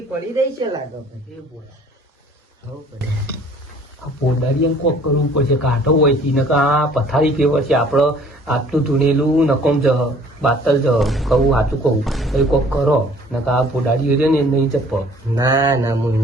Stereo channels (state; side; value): normal; both; correlation 0.54